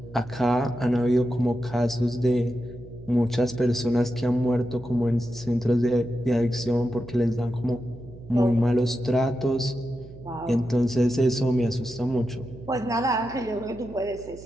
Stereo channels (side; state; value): right; noise; hum, 18 dB below the sound